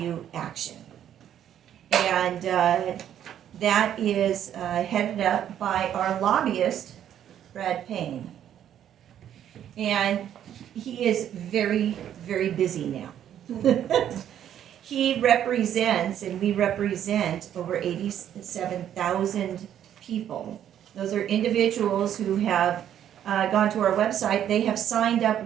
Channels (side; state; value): left; quieter; 10.3 dB